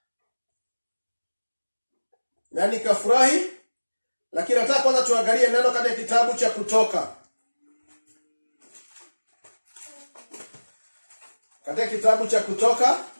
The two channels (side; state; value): both; inverted; correlation -1.00